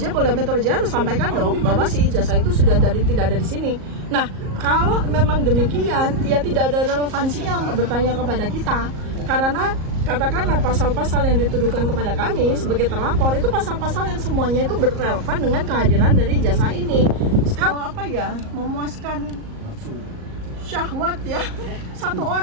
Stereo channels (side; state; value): left; late; 38 ms